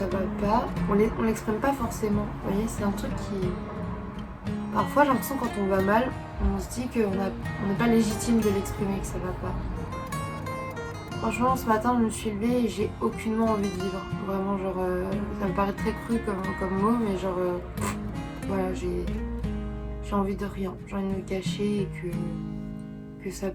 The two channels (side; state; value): both; identical; correlation 1.00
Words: va pas, on l'exprime pas forcément. Vous voyez, c'est un truc qui... Parfois j'ai l'impression quand on va mal, on se dit qu'on n'est pas légitime de l'exprimer, que ça va pas. Franchement, ce matin, je me suis levée et j'ai aucunement envie de vivre. Vraiment, genre, ça me paraît très cru comme mot, mais genre, voilà, j'ai envie de rien. J'ai envie de me cacher et que ça